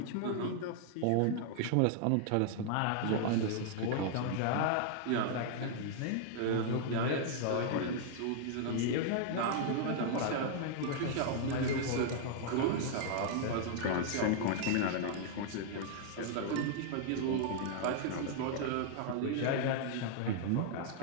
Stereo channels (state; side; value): different; both; correlation -0.01